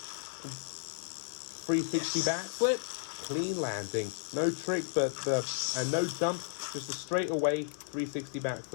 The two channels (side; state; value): right; silent; digital silence